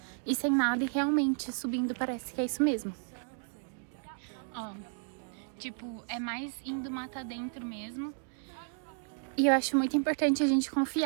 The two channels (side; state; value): left; silent; 56 dB below the other